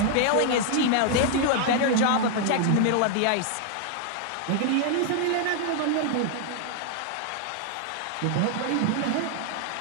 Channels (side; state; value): both; different; correlation 0.00